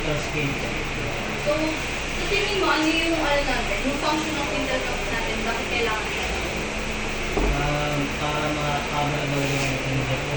spindle. So, sa tingin mo, ano yung ano natin? Yung function ng quintal valve natin, bakit kailangan siya? Para ma-cover daw yung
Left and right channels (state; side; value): identical; both; correlation 1.00